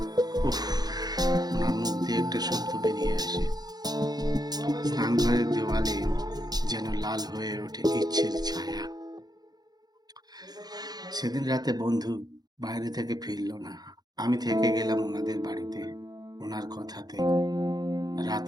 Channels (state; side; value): late; left; 0.19 ms